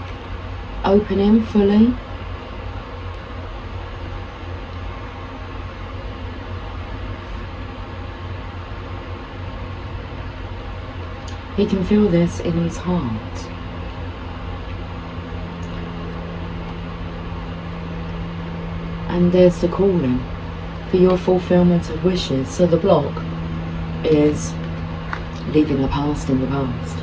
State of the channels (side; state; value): both; identical; correlation 1.00